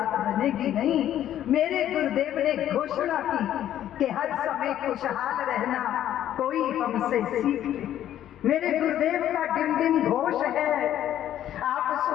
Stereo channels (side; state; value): right; quieter; 11.5 dB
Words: बनेगी नहीं। मेरे गुरुदेव ने घोषणा की कि हर समय खुशहाल रहना कोई हमसे सीख ले। मेरे गुरुदेव का डिम डिम घोष है, आप